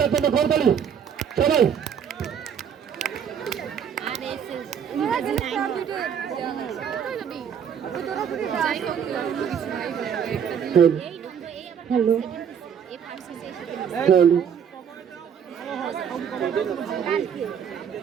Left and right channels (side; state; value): left; quieter; 7.9 dB